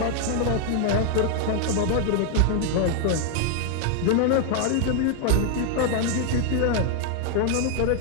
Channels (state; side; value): different; both; correlation 0.00